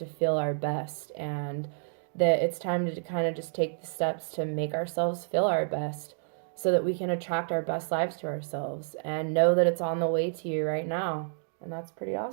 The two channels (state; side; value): silent; left; digital silence